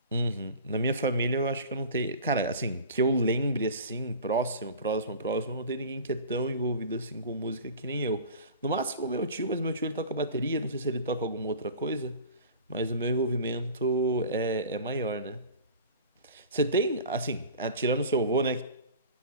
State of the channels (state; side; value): inverted; both; correlation -0.39